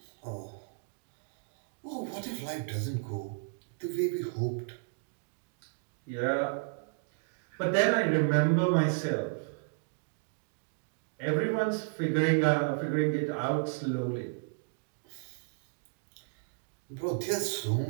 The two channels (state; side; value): silent; left; digital silence